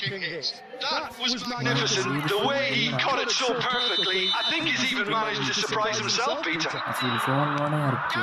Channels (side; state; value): both; identical; correlation 1.00